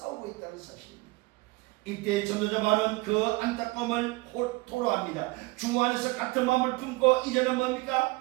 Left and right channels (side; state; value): left; quieter; 23.3 dB